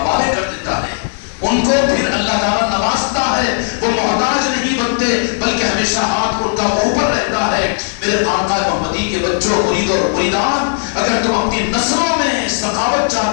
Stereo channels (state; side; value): silent; right; 69 dB below the other